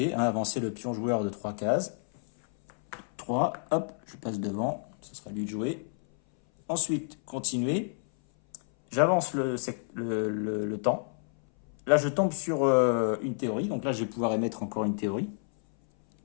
avancer le pion joueur de 3 cases. 3, hop, je passe devant. Ce sera lui de jouer. Ensuite, continuer. J'avance le temps. Là, je tombe sur une théorie. Donc là, je vais pouvoir émettre encore une théorie.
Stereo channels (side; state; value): right; silent; 58 dB below the other